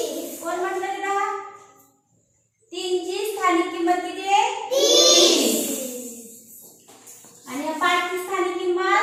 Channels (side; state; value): both; identical; correlation 1.00